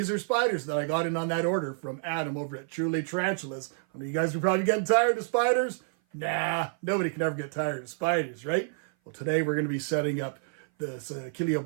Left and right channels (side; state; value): left; silent; 56 dB below the other